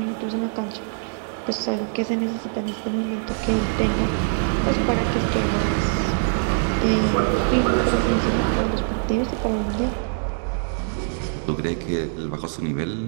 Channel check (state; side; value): silent; left; 63 dB below the other